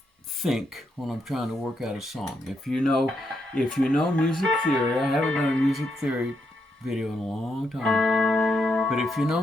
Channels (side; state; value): both; normal; correlation 0.80